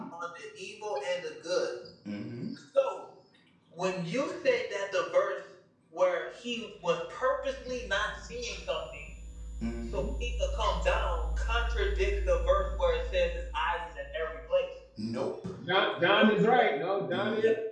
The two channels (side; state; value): both; identical; correlation 1.00